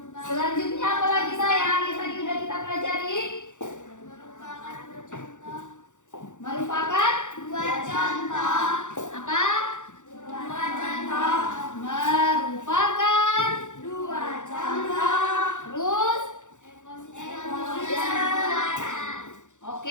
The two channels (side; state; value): right; late; 0.85 ms